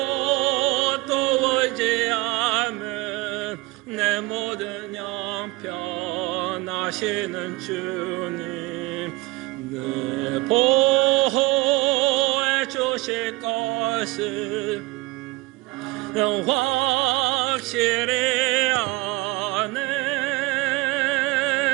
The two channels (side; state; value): left; quieter; 21.1 dB